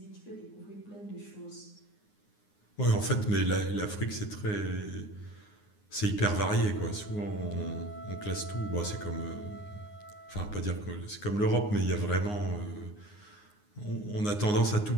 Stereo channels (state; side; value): late; right; 9.7 ms